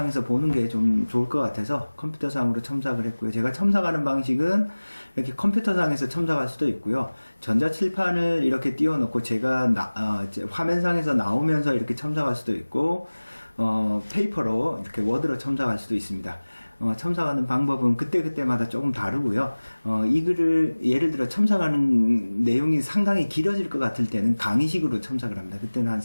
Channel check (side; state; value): both; inverted; correlation -1.00